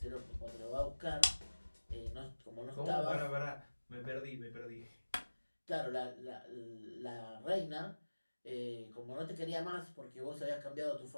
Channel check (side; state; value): both; inverted; correlation -1.00